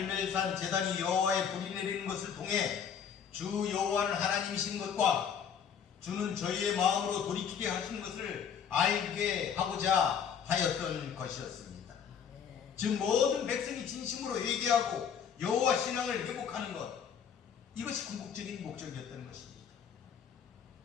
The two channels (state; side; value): quieter; right; 7.7 dB